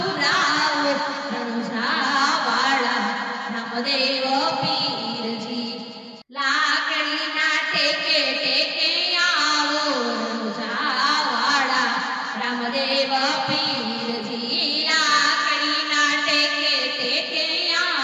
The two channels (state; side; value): identical; both; correlation 1.00